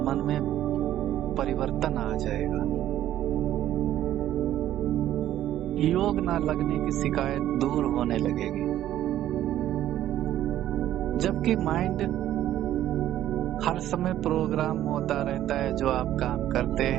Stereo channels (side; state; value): left; quieter; 12.5 dB